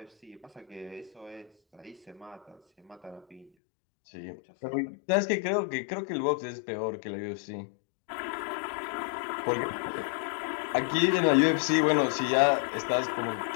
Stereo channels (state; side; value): drops out; right; at 3.5 s